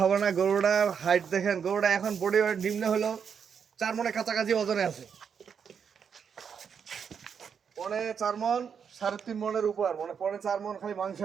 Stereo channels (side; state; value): left; quieter; 7.0 dB